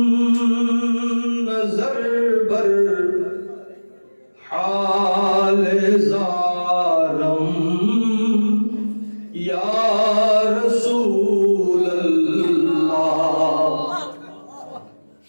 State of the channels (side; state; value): both; inverted; correlation -1.00